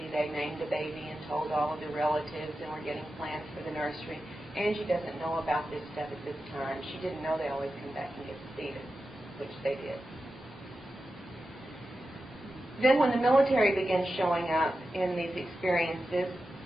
they named the baby and told all of the relatives, and were getting plans for the nursery. Angie doesn't know about this stuff at this time. She didn't know they always come back and get the fetus, which they did. Then when the military began showing up in these experiences,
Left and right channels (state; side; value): normal; both; correlation 0.92